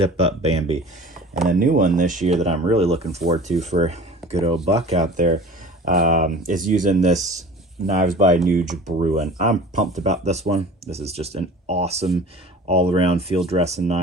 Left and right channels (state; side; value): normal; both; correlation 0.41